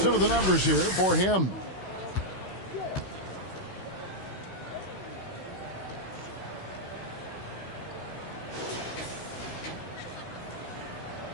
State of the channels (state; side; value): late; right; 16 ms